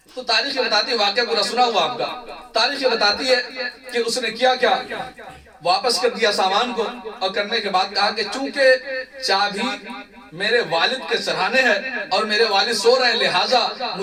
تو تاریخ بتاتی ہے, واقعہ پورا سنا ہوا آپ کا, تاریخ بتاتی ہے کہ اس نے کیا واپس کر دیا سامان کو, اور کرنے کے بعد کہا کہ چونکہ چابی میرے والد کے سرہانے ہے اور میرے والد سو رہے ہیں لہٰذا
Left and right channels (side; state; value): both; identical; correlation 1.00